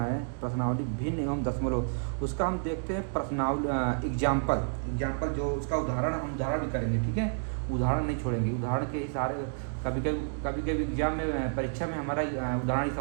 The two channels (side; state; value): left; silent; digital silence